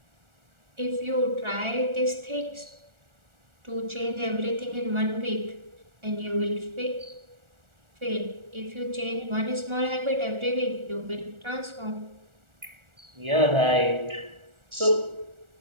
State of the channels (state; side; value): late; left; 1.4 ms